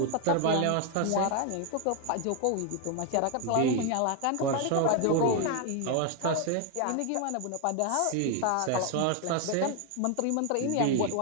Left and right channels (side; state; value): both; different; correlation 0.01